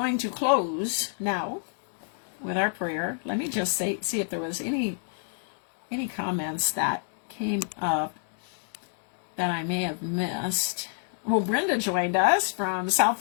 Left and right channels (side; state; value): right; silent; digital silence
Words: to close now with our prayer. Let me just see if there was any comments that came up that I may have missed. Well, Brenda joined us from South